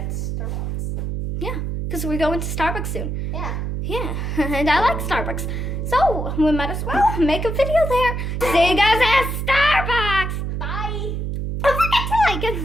Starbucks. Yeah, because we're going to Starbucks soon. Yeah. Yeah, and I like Starbucks. So we might as well make a video there. See you guys at Starbucks. Bye. Don't forget to like and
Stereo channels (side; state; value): right; noise; hum, 3 dB below the sound